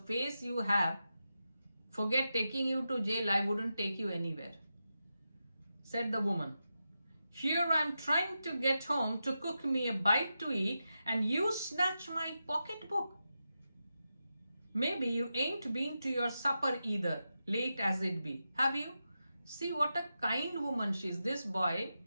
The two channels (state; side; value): inverted; both; correlation -0.89